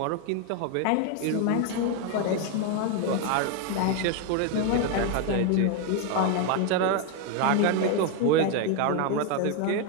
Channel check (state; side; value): different; both; correlation 0.01